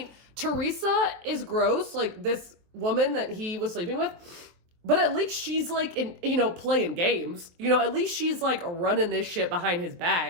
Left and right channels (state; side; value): late; left; 23 ms